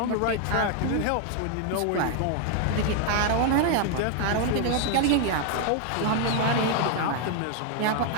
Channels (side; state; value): both; different; correlation 0.00